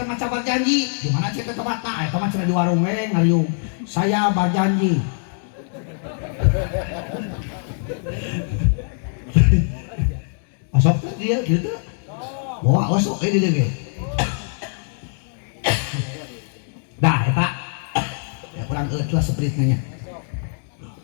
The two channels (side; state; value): right; silent; digital silence